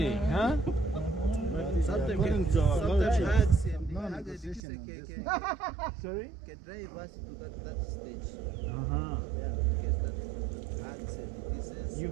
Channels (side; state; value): left; drops out; at 4.6 s